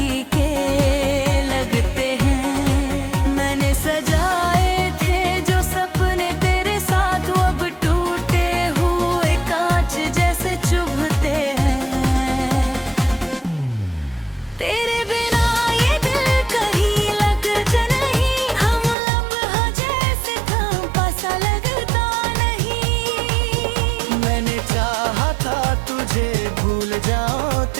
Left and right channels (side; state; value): left; drops out; at 18.9 s